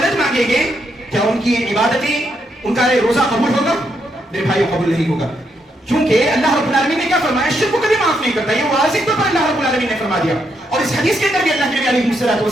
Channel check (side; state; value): both; normal; correlation 0.78